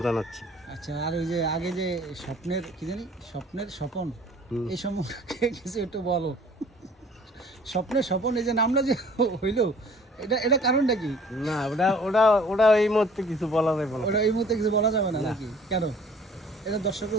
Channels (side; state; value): both; normal; correlation 0.52